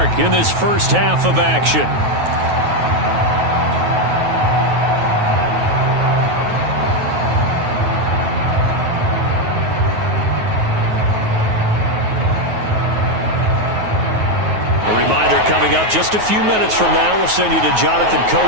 in this first half of action. Coming up just a few minutes from now, we'll send you to Jonathan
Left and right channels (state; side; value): late; left; 9.4 ms